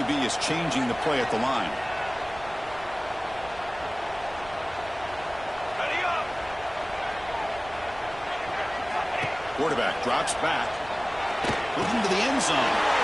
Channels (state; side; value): noise; right; rumble, 19 dB below the sound